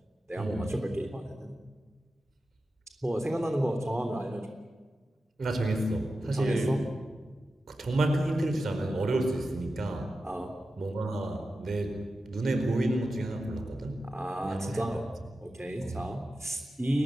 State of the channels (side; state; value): both; normal; correlation 0.92